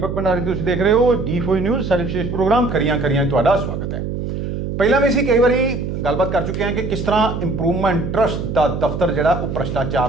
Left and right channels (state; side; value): noise; right; hum, 4 dB below the sound